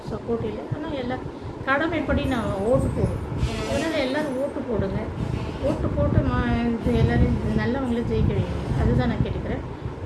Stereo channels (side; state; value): both; identical; correlation 1.00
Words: சப்போர்ட் இல்லை. ஆனால் எல்லாம் கடமைப்படி நான் ஓட்டு போடுவேன். அதனால் எல்லோரும் ஓட்டு போடுங்க. ஓட்டு போட்டு எல்லோரும் நல்லவங்களே ஜெயிக்க வைங்க. அதுதான் நான் கேட்டுக்கிறேன்.